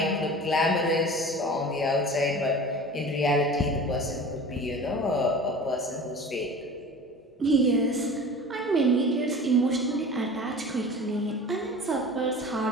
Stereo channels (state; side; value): normal; both; correlation 0.38